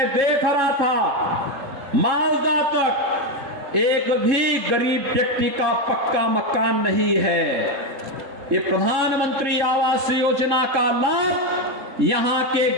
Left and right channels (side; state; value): left; late; 3.6 ms